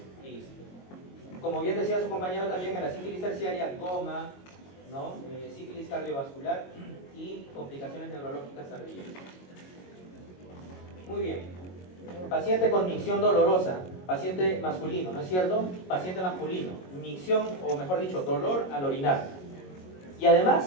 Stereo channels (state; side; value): late; right; 22 ms